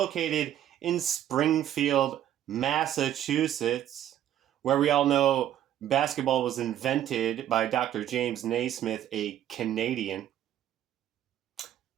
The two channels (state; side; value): quieter; left; 11.4 dB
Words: in Springfield, Massachusetts, where we all know basketball was invented by Dr. James Naismith, a Canadian.